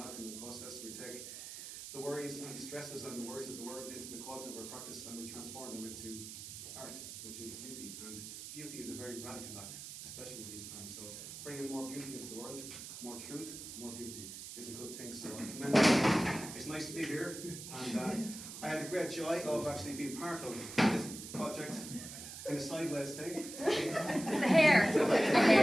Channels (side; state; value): right; noise; hiss, 10 dB below the sound